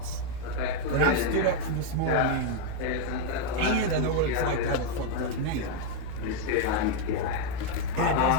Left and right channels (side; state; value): both; different; correlation 0.01